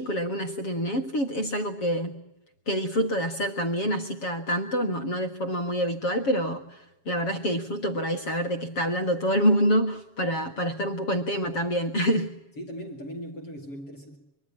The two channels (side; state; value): right; late; 7.3 ms